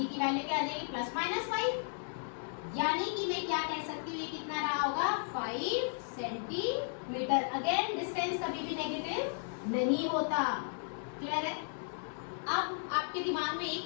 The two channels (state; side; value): silent; right; 55 dB below the other